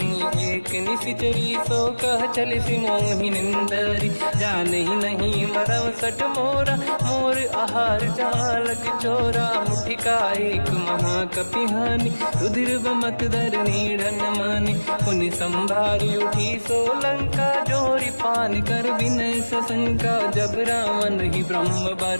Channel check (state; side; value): inverted; both; correlation -1.00